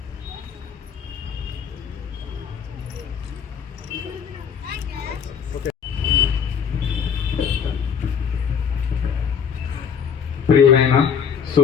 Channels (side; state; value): right; quieter; 7.3 dB